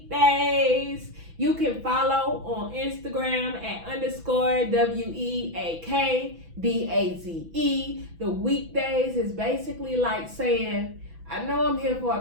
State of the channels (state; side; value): late; left; 6.0 ms